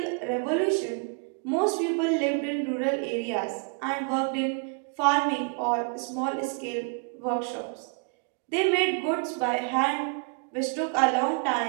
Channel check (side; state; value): left; quieter; 39.2 dB